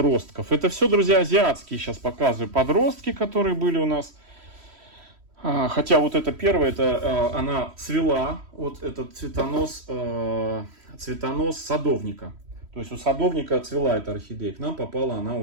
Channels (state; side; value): late; left; 3.1 ms